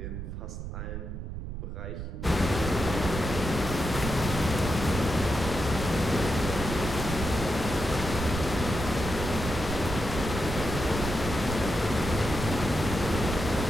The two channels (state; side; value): noise; right; rumble, 6 dB below the sound